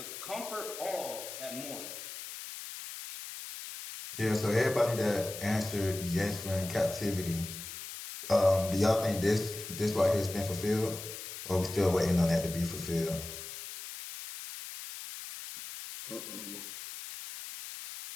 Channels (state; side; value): noise; left; hiss, 10 dB below the sound